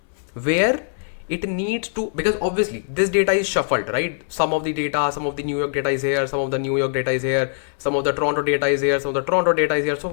where it needs to, because obviously this data is shuffled, right? Some of the data, some of the New York data is here, some of the New York data is here, some of the Toronto data is here, some of the Toronto data is here. So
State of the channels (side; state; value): right; silent; 64 dB below the other